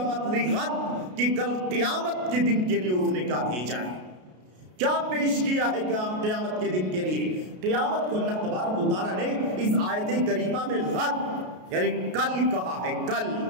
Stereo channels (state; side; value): late; left; 33 ms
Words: لغد، کہ کل قیامت کے دن کے لیے اس نے کیا بھیجا ہے، کیا پیش کیا ہے قیامت کے دن کے لیے۔ قیامت کو اللہ تبارک و تعالیٰ نے اس آیت کریمہ میں غد یعنی کل کہا ہے، کل،